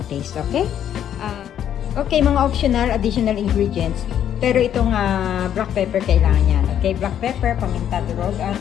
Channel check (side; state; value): right; quieter; 10.0 dB